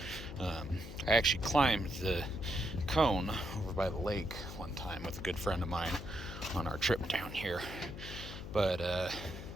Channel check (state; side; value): noise; left; hum, 10 dB below the sound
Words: I actually climbed the cone over by the lake one time with a good friend of mine on our trip down here. But